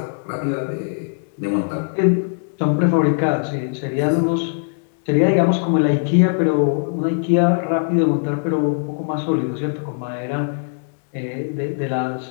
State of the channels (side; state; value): right; silent; digital silence